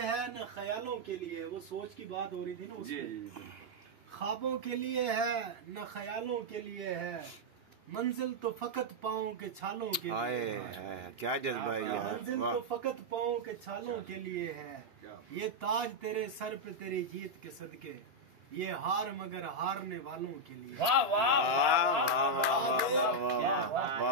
है न ख्यालों के लिए, वो सोच की बात हो रही थी ना उसमें। ख्वाबों के लिए है न ख्यालों के लिए है, मंजिल तो फकत पाँव के छालों के लिए है। क्या जज्बा है यार। मंजिल तो फकत पाँव के छालों के लिए है। ये ताज तेरे सर पे तेरी जीत के सदके, ये हार मगर हारने वालों के लिए। वाह वाह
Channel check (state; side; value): late; left; 2.9 ms